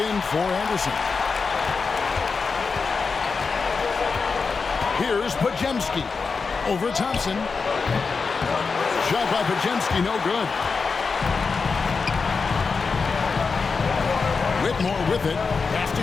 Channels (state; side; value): quieter; right; 4.9 dB